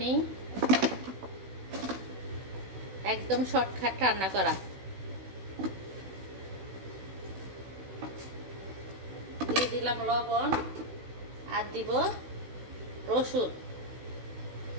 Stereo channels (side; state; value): left; late; 16 ms